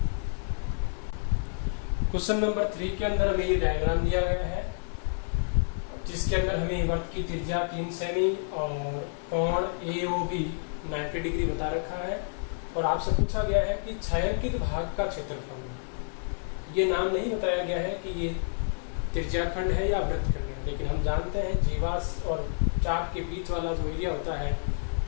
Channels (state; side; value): silent; right; digital silence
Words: क्वेश्चन नंबर 3 के अंदर हमें ये डायग्राम दिया गया है, जिसके अंदर हमें वर्त की त्रिज्या 3 सेमी और कोण AOB 90 डिग्री बता रखा है, और आपसे पूछा गया है कि छायांकित भाग का क्षेत्रफल। ये नाम नहीं बताया गया है कि ये त्रिज्या खंड है या वृत्तखंड है, लेकिन हम जानते हैं जीवाश और चाप के बीच वाला जो एरिया होता है